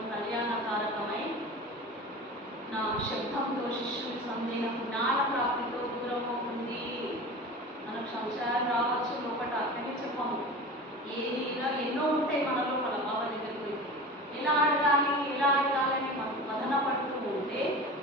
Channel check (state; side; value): normal; both; correlation 0.33